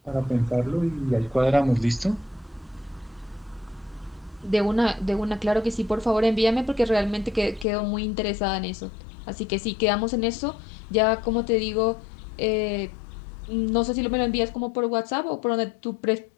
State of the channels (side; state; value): right; drops out; at 7.7 s